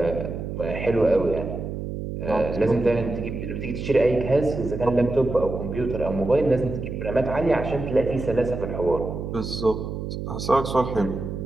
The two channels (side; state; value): right; noise; hum, 6 dB below the sound